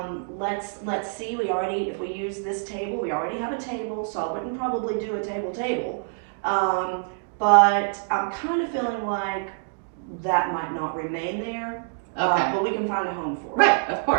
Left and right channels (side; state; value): left; silent; digital silence